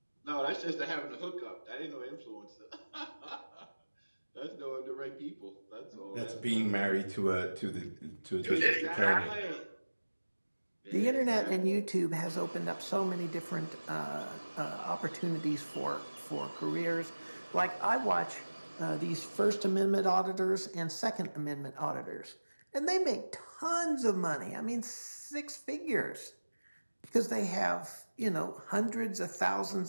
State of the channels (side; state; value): both; inverted; correlation -1.00